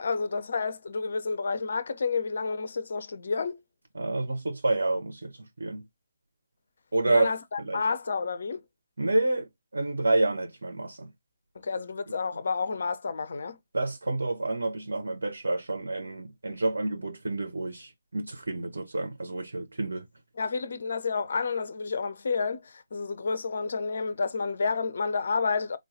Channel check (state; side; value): inverted; both; correlation -0.90